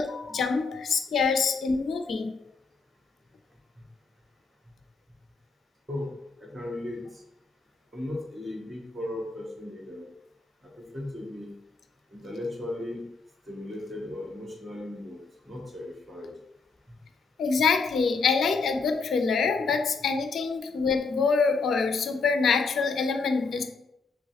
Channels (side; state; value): right; quieter; 4.4 dB